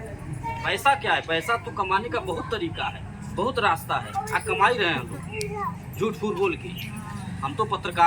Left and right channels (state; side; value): identical; both; correlation 1.00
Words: पैसा क्या है? पैसा तो कमाने का बहुत तरीका है, बहुत रास्ता है। आज कमा ही रहे हैं हम लोग झूठ फूट बोल के। हम तो